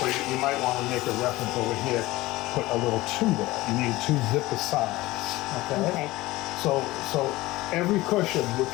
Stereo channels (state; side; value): quieter; right; 18.9 dB